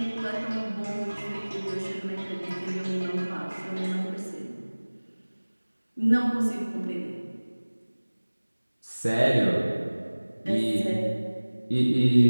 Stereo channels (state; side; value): inverted; both; correlation -1.00